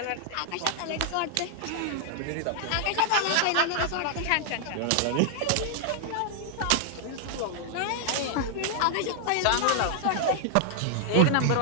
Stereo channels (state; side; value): different; both; correlation 0.00